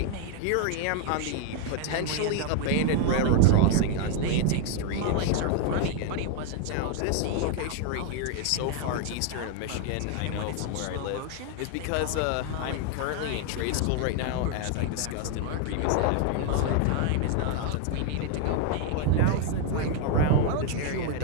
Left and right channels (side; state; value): both; different; correlation 0.00